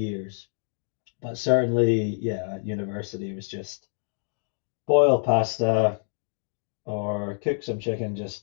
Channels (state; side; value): silent; right; digital silence